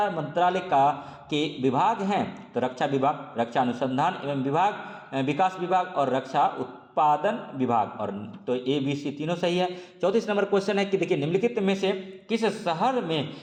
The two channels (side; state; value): both; identical; correlation 1.00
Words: मंत्रालय के विभाग हैं? तो रक्षा विभाग, रक्षा अनुसंधान एवं विकास विभाग और रक्षा उत्पादन विभाग। और तो ABC तीनों सही है। 34 नंबर क्वेश्चन है कि देखिए निम्नलिखित में से किस शहर में